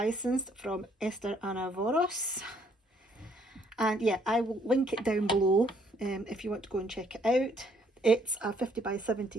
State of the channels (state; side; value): normal; both; correlation 0.66